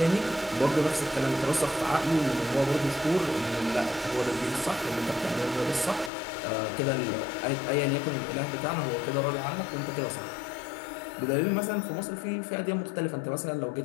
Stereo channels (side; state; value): right; drops out; at 6.1 s